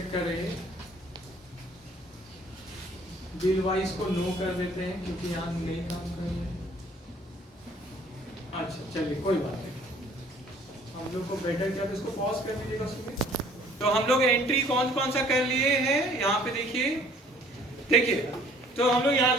करें, बिल वाइज को नो कर देते हैं, क्योंकि यहाँ नहीं काम कर रहे हैं। अच्छा चलिए कोई बात नहीं, हम लोग को बेटर क्या, इसको पॉज कर दीजिएगा सुनिए। तो हम लोग एंट्री कौन कौन सा कर लिए हैं, यहाँ पे देखिए, तो हम लोग यहाँ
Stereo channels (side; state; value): both; normal; correlation 0.56